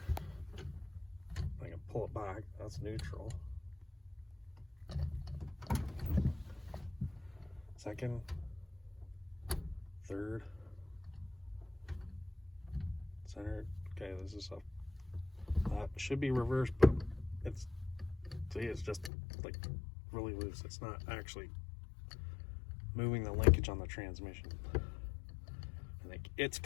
I can pull it back, that's neutral. Second, third, center. Okay, this is up. That should be reversed, but it's just like really loose. It's not actually moving the linkage on the transmission. I think it's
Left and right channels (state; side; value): drops out; right; at 19.1 s